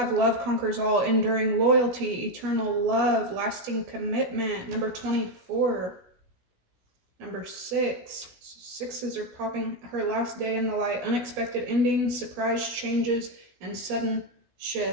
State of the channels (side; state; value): left; late; 16 ms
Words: love conquers all, enduring loyalty, eternal love, lasting commitment. Number 24. Number 6. Sixes are popping. Her last day in the light, unexpected endings, surprise changes, and sudden